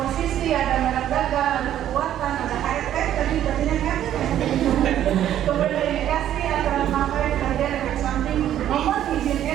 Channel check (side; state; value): left; quieter; 11.3 dB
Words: ada merek dagang, ada kekuatan, ada HRT, tadi jadinya kan. Kemudian indikasi antara pemakaian kerja efek samping, nomor izin